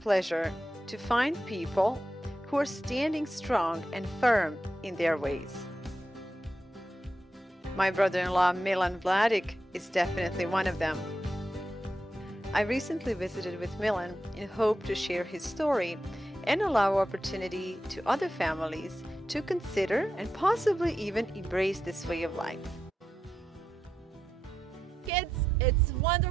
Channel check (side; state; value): both; normal; correlation 0.87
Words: pleasure to find people who are standing strong and firm in their ways. My brother-in-law Milan Vladic is definitely one of them. I recently visited with Milan in hope to share his story and allow opportunity to other families to consider and possibly even embrace this way of life. Kids, it's